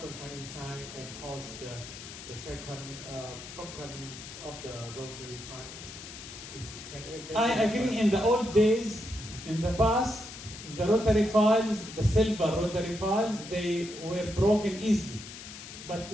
file inside and cause the second broken of the rotary file. I agree. In the old days, in the past, the rotary files, the silver rotary files, they were broken easily. But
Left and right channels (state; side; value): noise; left; hiss, 13 dB below the sound